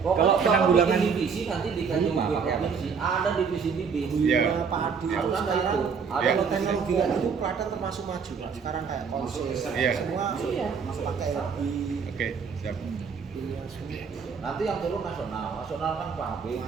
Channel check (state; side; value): quieter; left; 6.0 dB